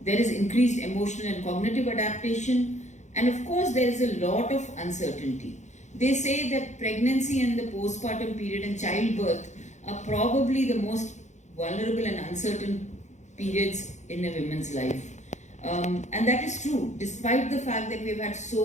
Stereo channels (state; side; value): late; right; 0.34 ms